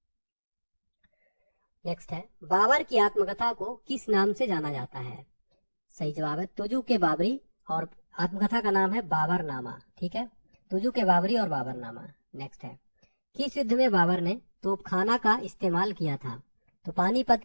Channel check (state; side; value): inverted; both; correlation -1.00